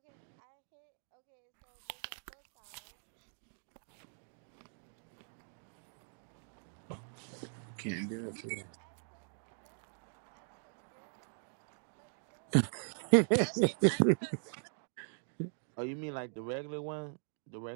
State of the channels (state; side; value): silent; left; digital silence